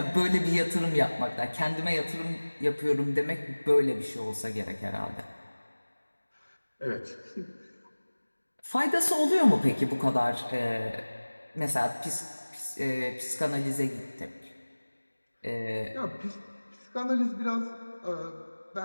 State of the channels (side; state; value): both; inverted; correlation -1.00